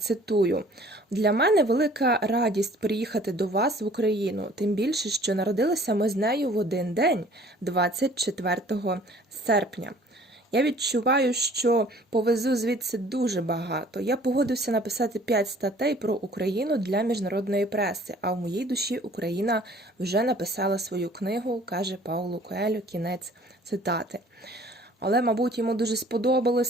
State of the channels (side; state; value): both; normal; correlation 0.53